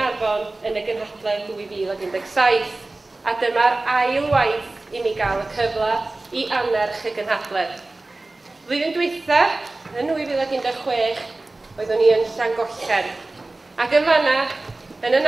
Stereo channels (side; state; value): left; quieter; 3.0 dB